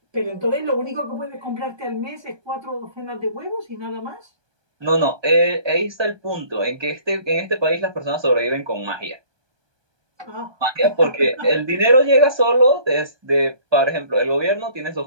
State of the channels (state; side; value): late; left; 1.2 ms